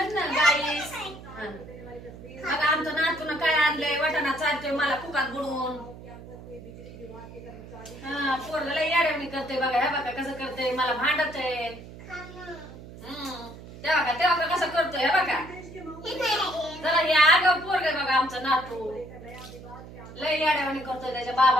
ना गाईस. बघा आमचं नातून काय आणलंय, वाटाणा चालतोय मला कुकात बुडवून. हा पोरग लय याड्यावणी करते बघा. हे बघा कसं करते, मला भांडतय. तेव्हा का कसं करतोय हे बघा. जरा हे आगाव पोरग बघा आमचं नातू, लय याड्यावणी करतोय त्याच्या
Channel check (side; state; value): right; noise; hum, 15 dB below the sound